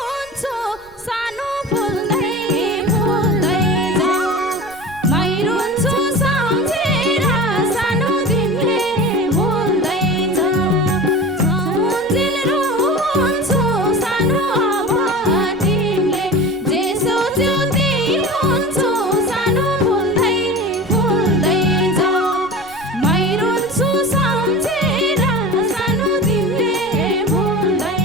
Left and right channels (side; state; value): right; noise; rumble, 27 dB below the sound